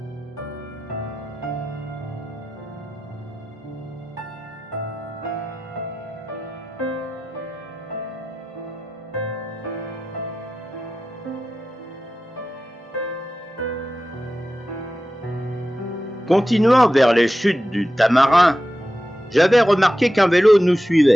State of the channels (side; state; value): both; normal; correlation 0.93